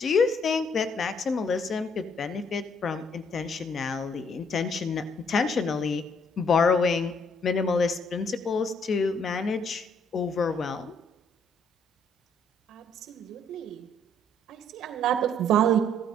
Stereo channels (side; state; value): both; normal; correlation 0.67